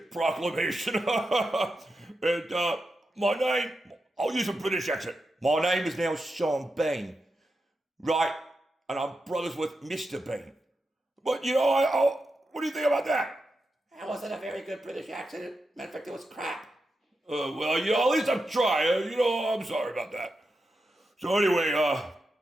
proclamation. And my name, I'll use a British accent. My name is now Sean Bean, right? And I'm brothers with Mr. Bean. But what do you think about that? That wasn't a very good British accent. Matter of fact, it was crap. Well, at least I'm trying. I'm sorry about that. So anyway,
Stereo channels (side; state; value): both; normal; correlation 0.88